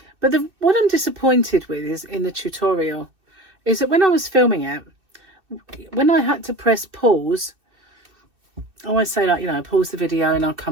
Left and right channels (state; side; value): late; left; 2.6 ms